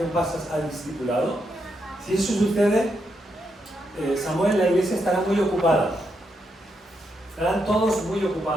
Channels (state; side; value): normal; both; correlation 0.81